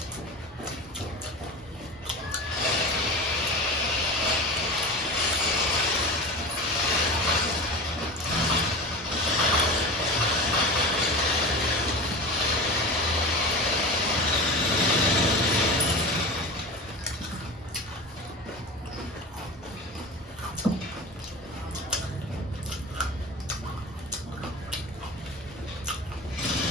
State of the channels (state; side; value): normal; both; correlation 0.30